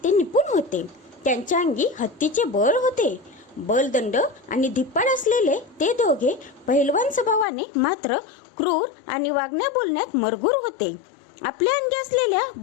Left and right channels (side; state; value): right; drops out; at 7.5 s